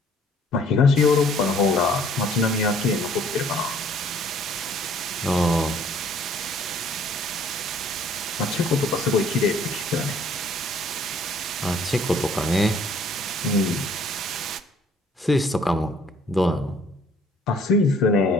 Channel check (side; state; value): both; normal; correlation 0.59